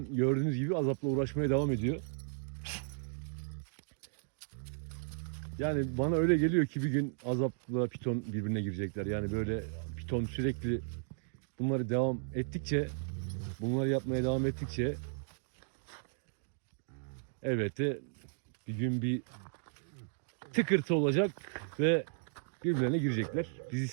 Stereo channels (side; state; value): left; silent; digital silence